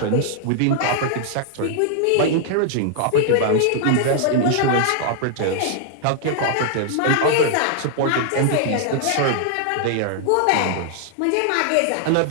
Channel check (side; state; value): both; different; correlation -0.01